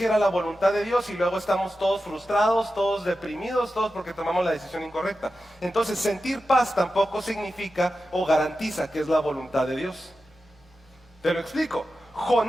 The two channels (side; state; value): both; normal; correlation 0.92